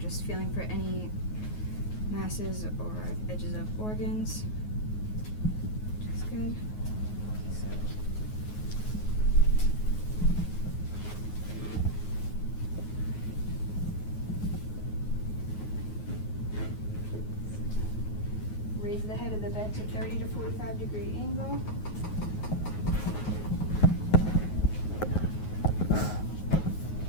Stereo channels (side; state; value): right; late; 9.4 ms